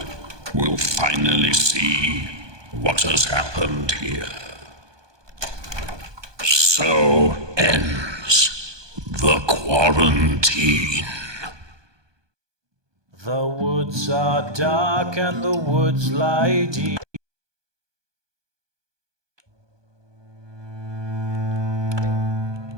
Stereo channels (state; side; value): late; left; 1.2 ms